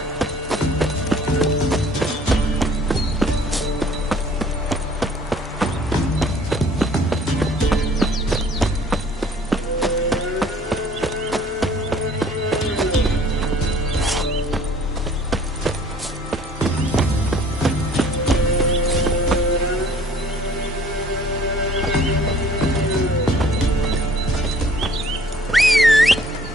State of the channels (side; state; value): both; normal; correlation 0.54